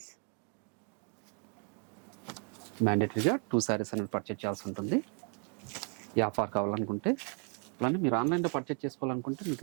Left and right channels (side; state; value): left; quieter; 39.3 dB